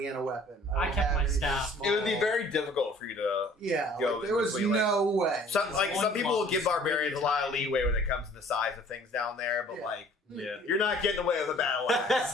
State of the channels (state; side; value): normal; both; correlation 0.53